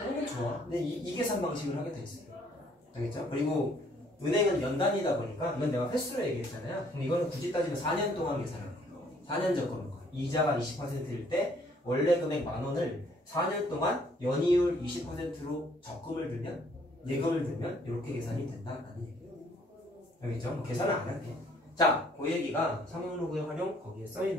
게 좋아. 근데 이 계산 방식을 하게 돼 있어요. 알겠죠? 그리고 은행은 연단이다 보니까 이건 내가 횟수로 얘기했잖아요. 그럼 이거는 굳이 따지면 4년 동안 계산하는 거예요. 4년 적금인 거예요. 이자가 20%일 때 원래 금액 10,000원을 4년 동안 연이율 20%로 적금을 들면 예금을 들면 이렇게 계산이 된다라는 얘기예요. 알겠죠? 뭐 계산은 안 할게. 자, 그 얘기가 상용로그의 활용 거기에 써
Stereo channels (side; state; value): both; normal; correlation 0.63